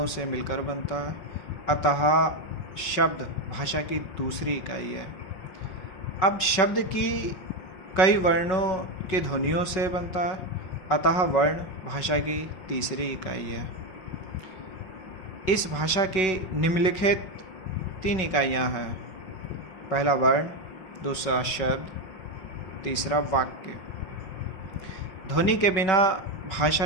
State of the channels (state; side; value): late; right; 5.3 ms